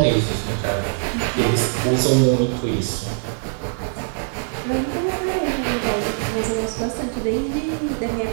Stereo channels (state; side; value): silent; left; digital silence